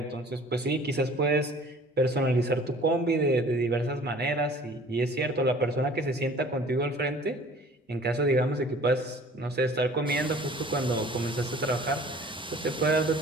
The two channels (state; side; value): normal; both; correlation 0.49